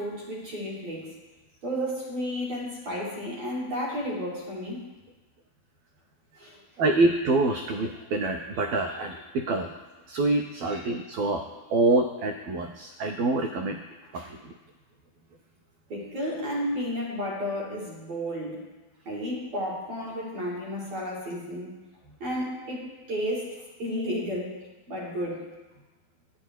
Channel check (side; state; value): left; late; 12 ms